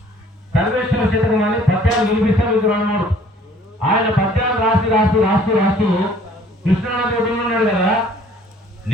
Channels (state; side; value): normal; both; correlation 0.56